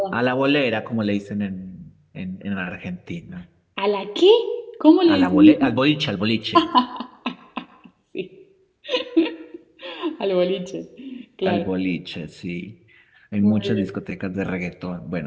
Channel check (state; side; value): identical; both; correlation 1.00